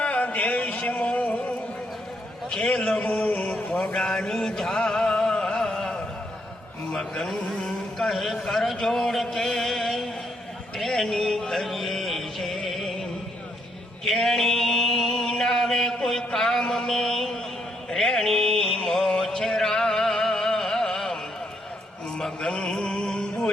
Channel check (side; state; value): both; normal; correlation 0.75